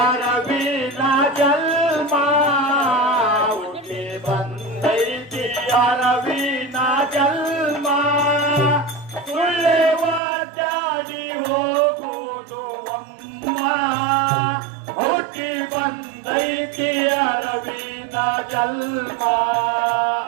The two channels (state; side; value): drops out; left; at 10.2 s